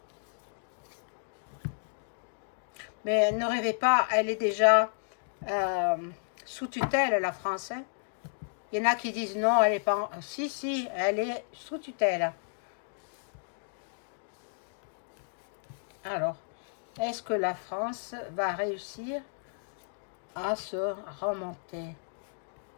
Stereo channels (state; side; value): silent; right; digital silence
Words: Mais ne rêvez pas, elle est déjà sous tutelle, la France. Hein. Il y en a qui disent non, elle est pas... Si, si, elle est sous tutelle. Alors, est-ce que la France va réussir à se remonter?